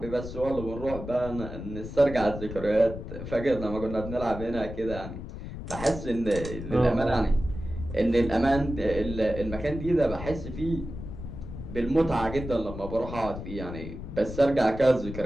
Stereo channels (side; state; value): left; noise; rumble, 9 dB below the sound